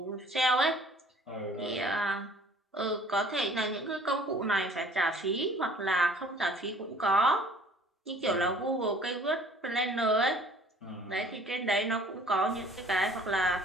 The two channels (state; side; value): normal; both; correlation 0.53